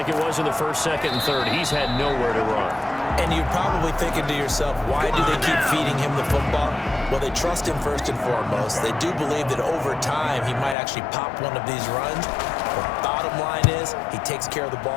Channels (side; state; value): right; drops out; at 10.8 s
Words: it was in the 1st, 2nd, and 3rd. He's had nowhere to run. And you're probably thinking to yourself, why do they keep feeding him the football? Well, they trust him first and foremost. They do believe that over time he might actually pop one of these runs. The bottom line is he takes care of the